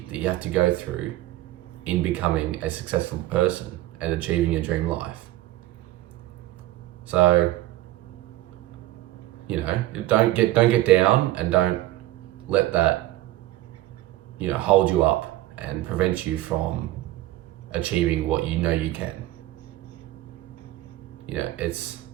that you have to go through in becoming a successful person and achieving your dream life. So, you know, don't get down, and don't let that, you know, hold you up and prevent you from achieving what you know you can. You know,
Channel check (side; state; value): left; quieter; 16.0 dB